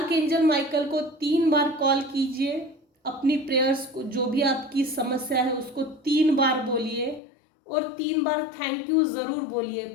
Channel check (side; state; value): right; drops out; at 7.2 s